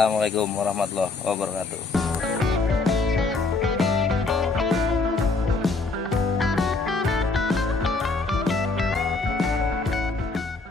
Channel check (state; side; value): quieter; right; 3.7 dB